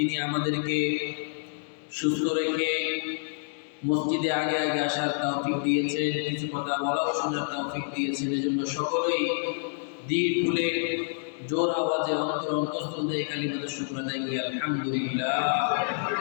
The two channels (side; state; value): right; silent; digital silence